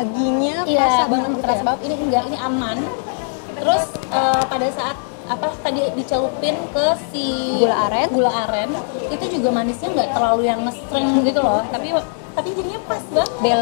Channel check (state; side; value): silent; right; digital silence